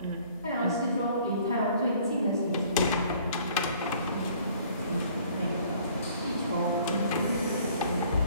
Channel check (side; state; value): both; inverted; correlation -0.56